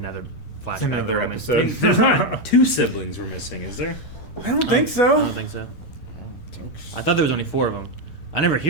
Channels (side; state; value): right; late; 10 ms